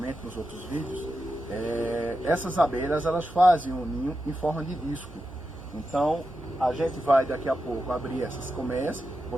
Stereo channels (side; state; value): both; normal; correlation 0.89